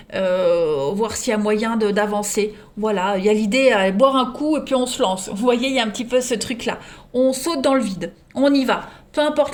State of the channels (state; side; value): identical; both; correlation 1.00